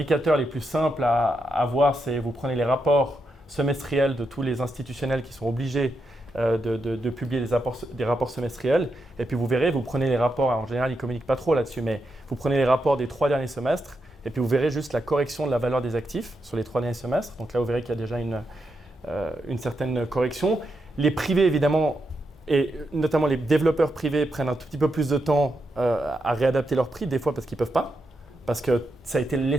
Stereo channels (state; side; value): normal; both; correlation 0.84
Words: les plus simples à voir, c'est vous prenez les rapports semestriels de tous les institutionnels qui sont obligés de publier des rapports semestriels. Et puis vous verrez, vous prenez les rapports, en général ils ne communiquent pas trop là-dessus, mais vous prenez les rapports des 3 derniers semestres et puis vous verrez juste la correction de la valeur des actifs sur les 3 derniers semestres. Donc là, vous verrez qu'il y a déjà une certaine correction. Les privés, évidemment, et notamment les développeurs privés prennent un tout petit peu plus de temps à réadapter leurs prix, des fois parce qu'ils ne peuvent pas, parce que ça a été